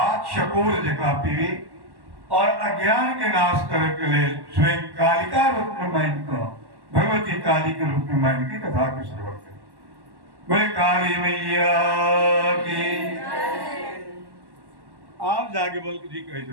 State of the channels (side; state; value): left; late; 1.1 ms